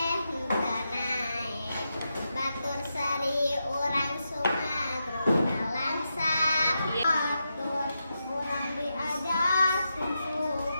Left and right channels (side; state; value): both; inverted; correlation -0.87